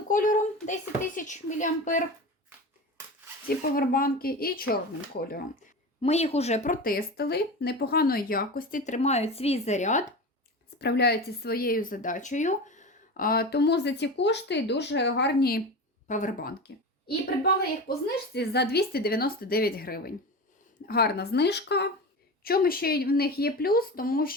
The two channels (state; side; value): normal; both; correlation 0.28